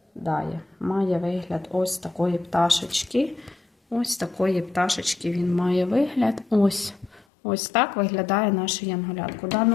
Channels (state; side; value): drops out; right; at 7.2 s